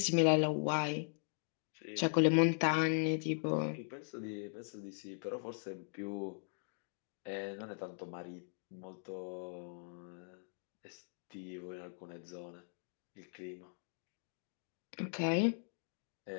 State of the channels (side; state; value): right; silent; digital silence